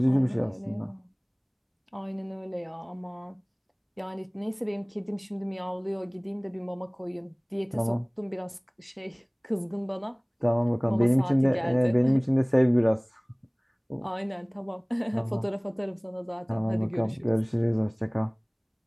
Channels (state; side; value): identical; both; correlation 1.00